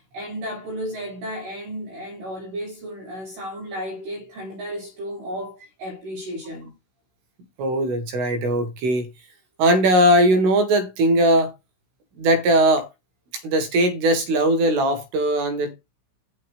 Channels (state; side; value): late; left; 16 ms